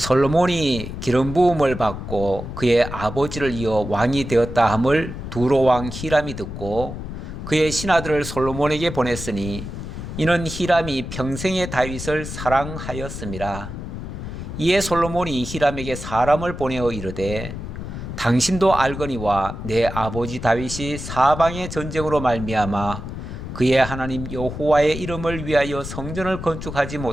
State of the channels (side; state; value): left; noise; rumble, 8 dB below the sound